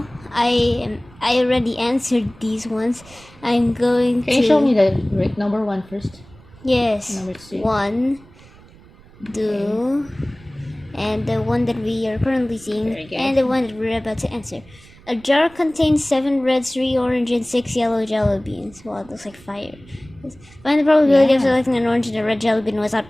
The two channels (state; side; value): noise; right; rumble, 24 dB below the sound